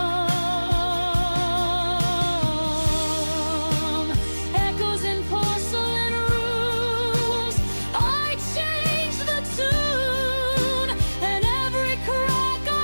Echoes in porcelain rooms, I changed the tune, and every crack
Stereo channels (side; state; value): both; inverted; correlation -1.00